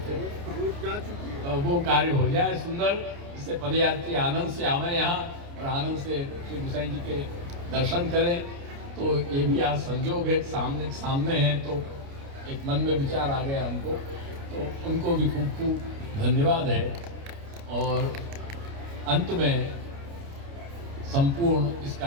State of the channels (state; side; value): late; left; 29 ms